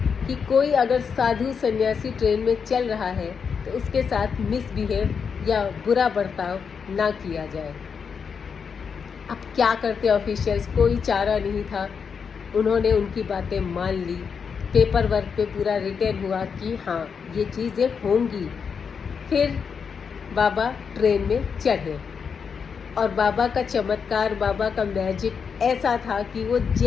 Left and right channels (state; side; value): quieter; right; 6.3 dB